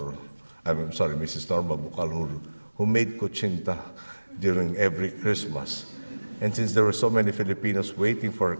Norma Bucal who made kuchinta during every Christmas. And since there were so many Filipinos waiting for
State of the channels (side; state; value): both; inverted; correlation -1.00